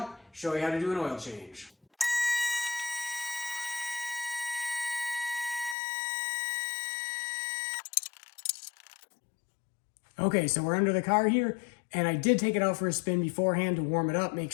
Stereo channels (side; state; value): right; drops out; at 5.8 s